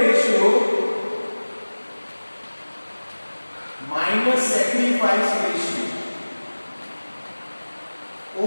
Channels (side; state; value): both; inverted; correlation -1.00